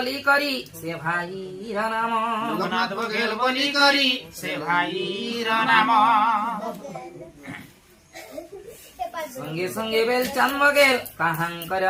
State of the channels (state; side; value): identical; both; correlation 1.00